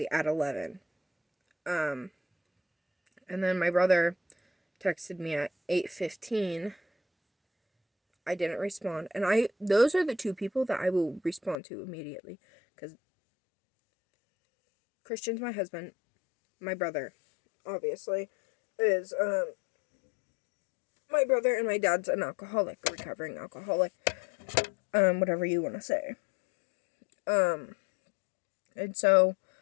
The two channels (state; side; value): drops out; right; at 11.6 s